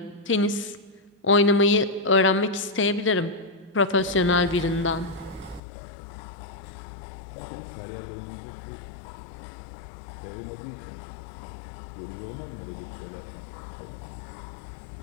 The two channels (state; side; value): drops out; right; at 5.6 s